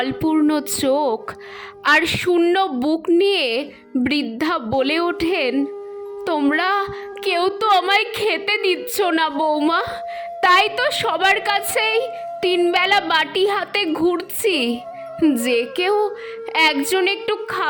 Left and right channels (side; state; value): both; identical; correlation 1.00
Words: চোখ আর শূন্য বুক নিয়ে বৃদ্ধা বলে ওঠেন, তোমরা কেউ তো আমায় খেতে দিচ্ছ না বৌমা, তাই তো সবার কাছেই তিনবেলা বাটি হাতে ঘুরছি, যে কেউ একজন একটু